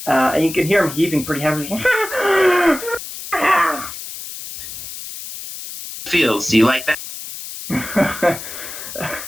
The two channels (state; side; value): noise; left; hiss, 10 dB below the sound